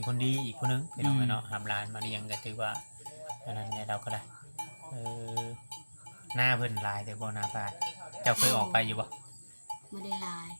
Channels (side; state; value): both; inverted; correlation -1.00